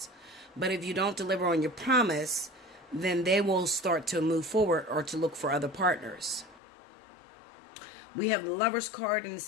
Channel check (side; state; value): right; drops out; at 6.6 s